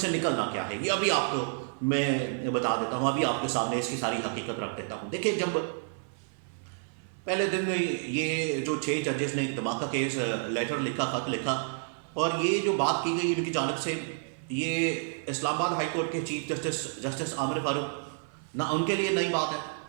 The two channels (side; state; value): left; silent; 58 dB below the other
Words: نکلنا کیا ہے، یہ ابھی آپ کو میں بتا دیتا ہوں، ابھی آپ کے سامنے اس کی ساری حقیقت رکھ دیتا ہوں۔ دیکھیں، جب پہلے دن یہ جو 6 ججز نے دھماکہ کیس لیٹر لکھا، خط لکھا، اور یہ جو بات کی گئی ان کی جانب سے، یہ اسلام آباد ہائی کورٹ کے چیف جسٹس عامر فاروق، نہ ان کے لیے نئی بات ہے،